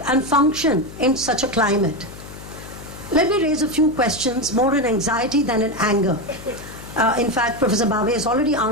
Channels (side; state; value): left; noise; hum, 15 dB below the sound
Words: and function in such a climate? Let me raise a few questions, more in anxiety than in anger. In fact, Professor Bave has already